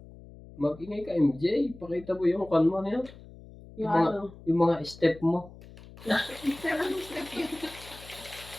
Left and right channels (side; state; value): left; noise; hum, 19 dB below the sound